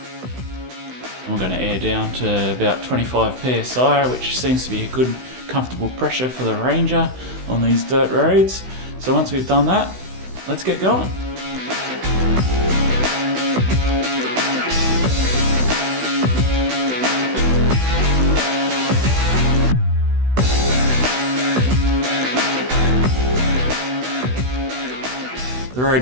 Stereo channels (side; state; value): left; late; 16 ms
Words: And we're going to air down to about 25 psi, which seems to be a good, comfortable pressure for the Ranger on these dirt roads. So once we've done that, let's get going. The